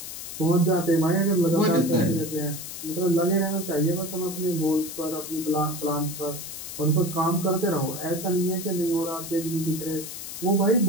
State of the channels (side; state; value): left; noise; hiss, 9 dB below the sound